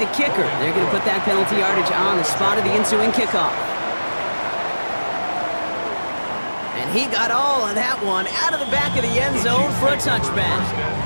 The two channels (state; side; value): inverted; both; correlation -1.00